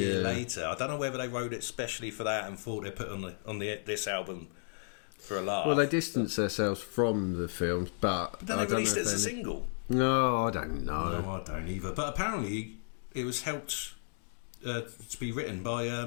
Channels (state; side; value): silent; right; digital silence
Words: later. I don't know whether they wrote it specially for that and thought they put on this album for a laugh. Well, they distanced themselves from the films, but then they released it as a single. No, I don't know. No, I don't either. But apparently, it was helped to be written